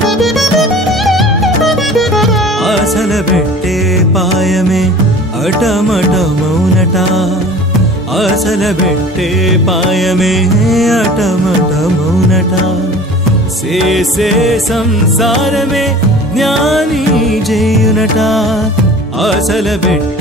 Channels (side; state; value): both; normal; correlation 0.43